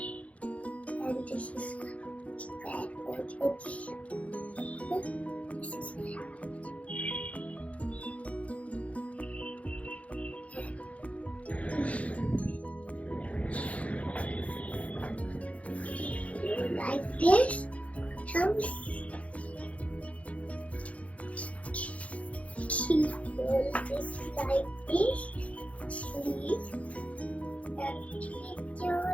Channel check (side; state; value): right; late; 0.065 ms